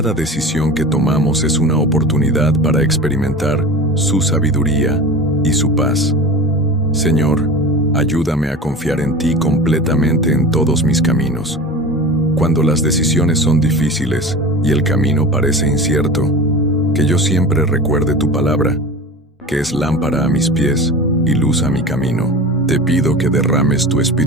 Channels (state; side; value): normal; both; correlation 0.33